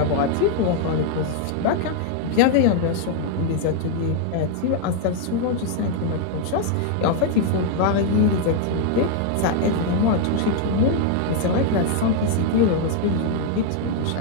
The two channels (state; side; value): different; both; correlation 0.00